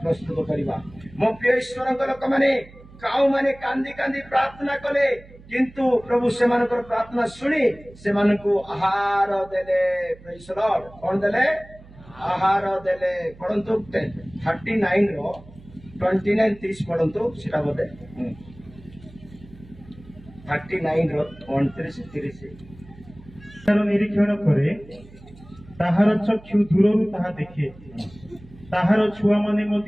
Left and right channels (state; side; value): noise; right; hum, 21 dB below the sound